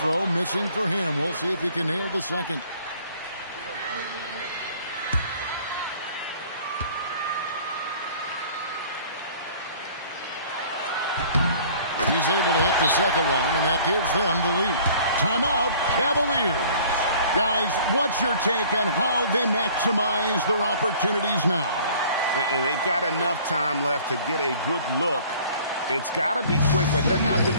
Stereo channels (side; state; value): both; inverted; correlation -0.51